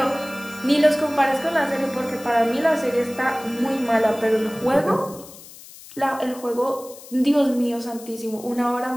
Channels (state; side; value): noise; left; hiss, 18 dB below the sound